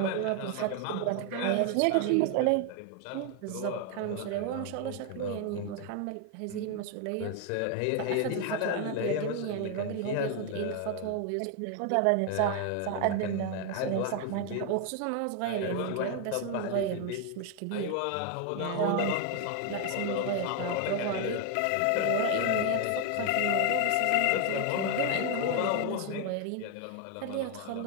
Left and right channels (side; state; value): both; different; correlation 0.01